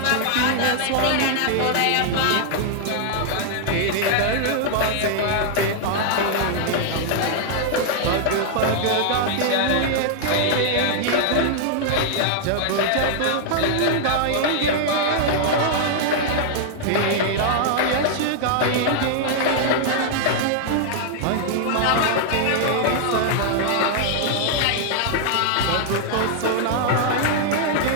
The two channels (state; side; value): different; both; correlation -0.01